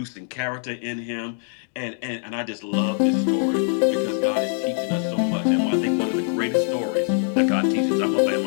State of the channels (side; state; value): right; silent; digital silence